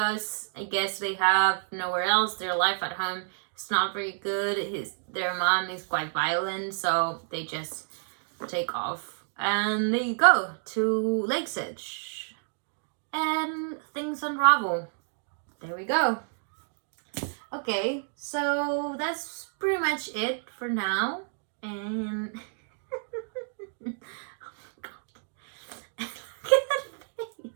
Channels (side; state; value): left; silent; digital silence